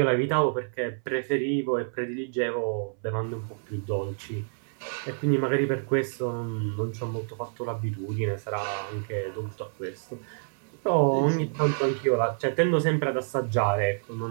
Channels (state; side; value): silent; left; 59 dB below the other